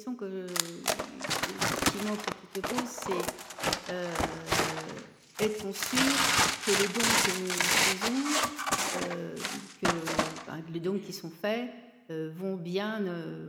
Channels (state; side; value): identical; both; correlation 1.00